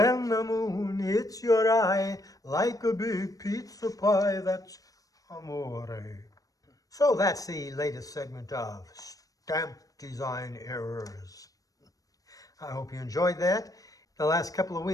the moon hits your eye like a big pizza pie, that's amore. So that's the latest segment of Stamp Design Errors. I hope you enjoyed that. The last couple of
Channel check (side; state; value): right; late; 0.17 ms